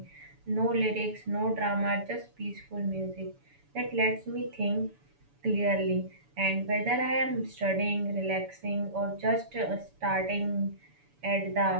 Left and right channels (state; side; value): late; left; 7.0 ms